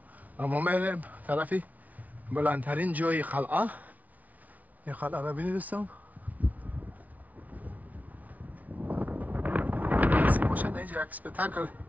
اما میریم طرفی بلندترین جای قلعه. این قلعه را ببینید دوستان. نصیب باشد اینجا یک سپتاکل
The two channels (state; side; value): late; left; 0.079 ms